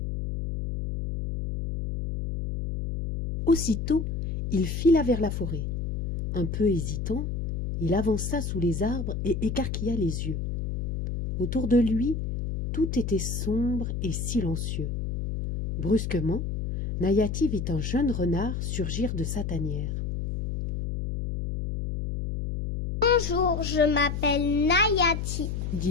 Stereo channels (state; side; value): noise; left; hum, 3 dB below the sound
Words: Aussitôt, il fila vers la forêt. Un peu hésitant, il avança sous les arbres et écarquilla les yeux. Autour de lui, tout était sombre et silencieux. Brusquement, Nayati vit un jeune renard surgir de sa tanière. « Bonjour, je m'appelle Nayati, »